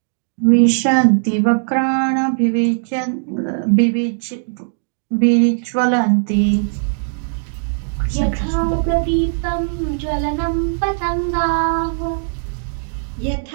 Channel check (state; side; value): silent; left; digital silence